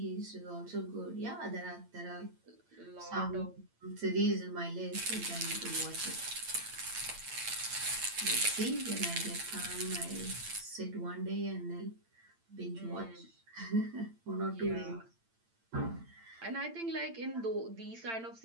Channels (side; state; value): left; late; 8.8 ms